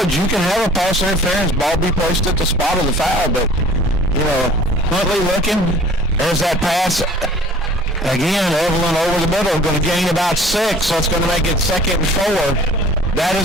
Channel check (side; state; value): both; normal; correlation 0.49